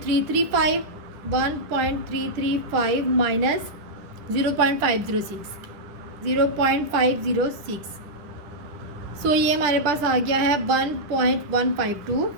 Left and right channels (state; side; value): late; left; 10 ms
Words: माइनस 0.506। सो ये हमारे पास आ गया है 1.152